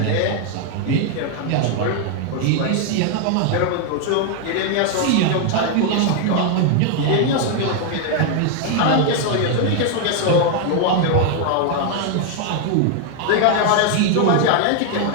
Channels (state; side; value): different; both; correlation 0.00